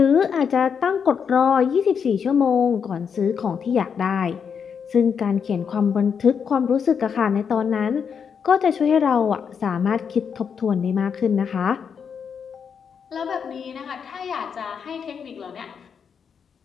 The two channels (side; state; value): right; quieter; 6.8 dB